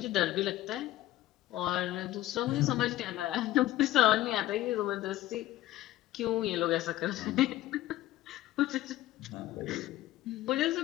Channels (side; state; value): right; quieter; 15.1 dB